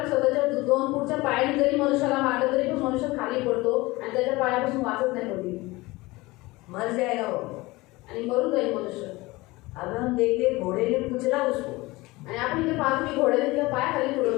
स्वतःच्या 2 फूटच्या पायाने जरी मनुष्याला मारलं तरी पण मनुष्य खाली पडतो आणि त्याच्या पायापासून वाचत नाही कधी, मर जाएगा वो आणि मरून जाईल मनुष्य. अब हम देखते घोड़े ने कुचला उसको, आणि आपण इथे पाहतो की घोड्याने तिला पायाखाली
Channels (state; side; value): quieter; right; 21.4 dB